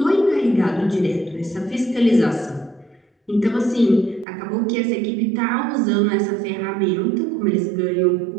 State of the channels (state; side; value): drops out; left; at 4.2 s